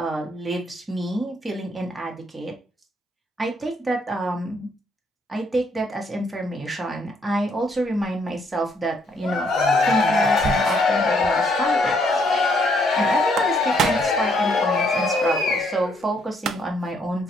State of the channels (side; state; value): both; normal; correlation 0.69